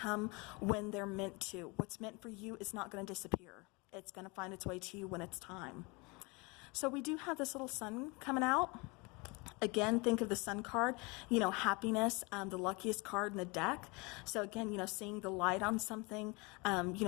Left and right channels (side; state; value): right; quieter; 27.7 dB